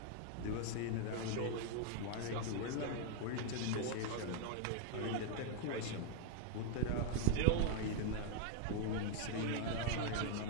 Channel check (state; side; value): different; both; correlation 0.00